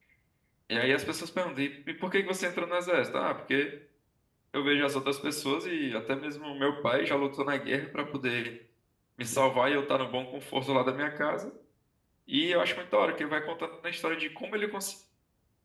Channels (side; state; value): both; identical; correlation 1.00